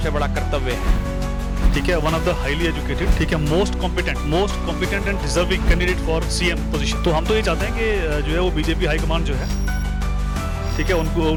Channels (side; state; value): both; identical; correlation 1.00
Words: बड़ा कर्तव्य है। ठीक है, one of the highly educated, ठीक है, most competent and deserving candidate for CM position. तो हम तो ये चाहते हैं कि जो है वो बीजेपी हाईकमान जो है, ठीक है,